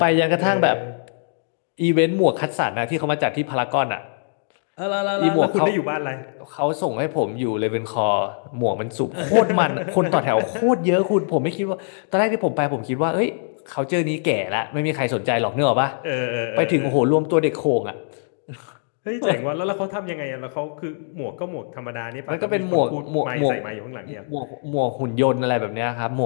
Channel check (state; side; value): silent; right; digital silence